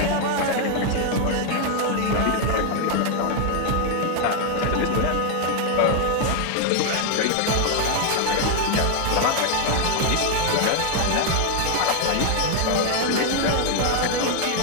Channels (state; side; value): different; both; correlation 0.01